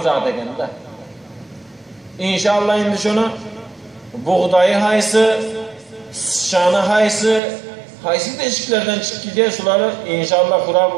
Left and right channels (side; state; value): left; drops out; at 7.4 s